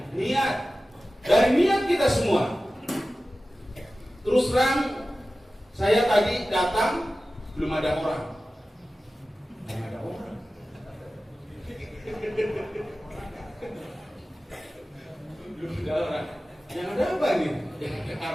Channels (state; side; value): normal; both; correlation 0.95